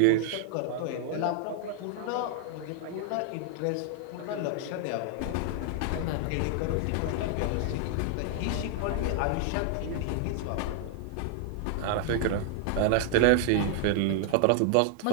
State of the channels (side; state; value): both; different; correlation 0.00